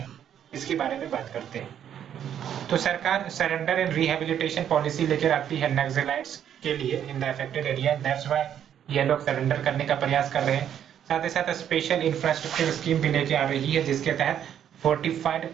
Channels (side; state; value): left; quieter; 9.6 dB